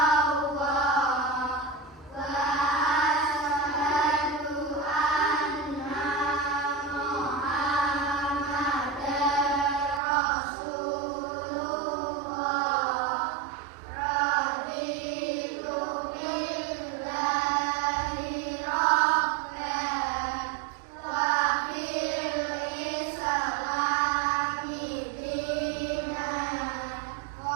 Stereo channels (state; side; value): drops out; left; at 10.0 s